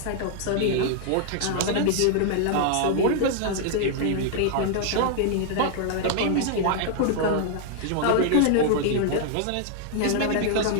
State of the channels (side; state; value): both; different; correlation 0.00